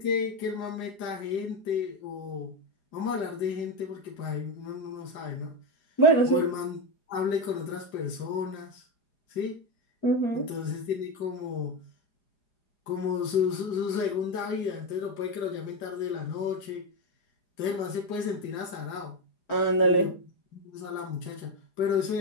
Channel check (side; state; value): right; late; 4.9 ms